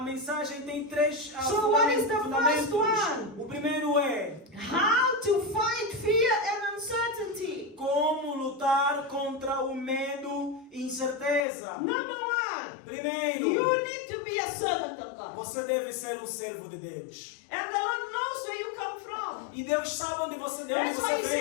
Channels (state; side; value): drops out; right; at 11.5 s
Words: mensagem tem três So what is the fundamentos. first one? O primeiro é How to fight fear and uncertainty. como lutar contra o medo e incerteza. Number one, Primeiro, you need to be a servant of God. você deve ser um servo de Deus. And the Lord knows where you come from. E Deus sabe de onde That's why você